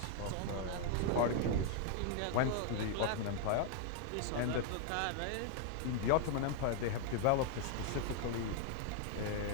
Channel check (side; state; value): both; different; correlation 0.00